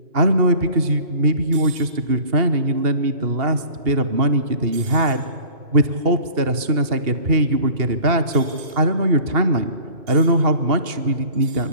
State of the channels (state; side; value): late; left; 2.8 ms